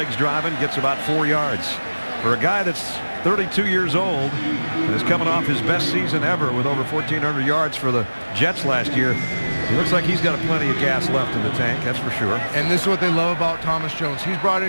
driving, gets about 4 yards. For a guy that's 32 years old and is coming off his best season ever with over 1,400 yards for the Jets last year, He looks like he's got plenty of gas left in the tank, that's for sure. And this is what they love about Thomas Jones. He's brought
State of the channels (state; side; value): inverted; both; correlation -1.00